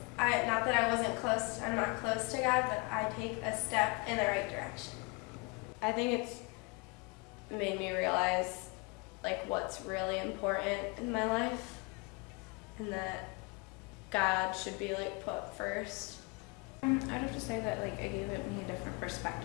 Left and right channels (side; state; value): right; quieter; 28.8 dB